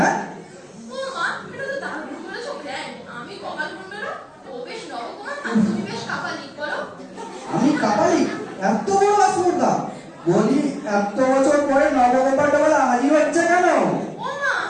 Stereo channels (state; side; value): identical; both; correlation 1.00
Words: ও মা, এটা তো দারুণ বলেছো, গ্র্যান্ড। আমি কপাল কুণ্ডলা, ও বেশ নবকুমার, আর তুমি বেশ কাপালিক, বলো। আমি কাপালি? এত বড় আসপর্দা? বলি এত বছর পরে নবগোপালটা বলে হাজির হচ্ছে কেন? ও মা,